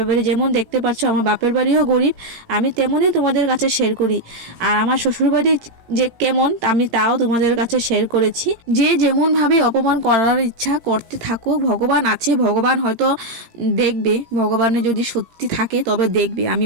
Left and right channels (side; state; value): left; late; 18 ms